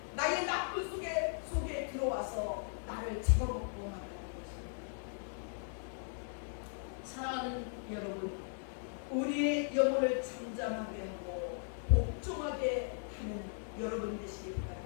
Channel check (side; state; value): right; silent; digital silence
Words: 나의 나쁜 속에 들어와서 나를 잡아먹고 말하는 것입니다. 사랑하는 여러분, 우리의 영혼을 잠잠하게 하고 복종하게 하는 여러분 되시기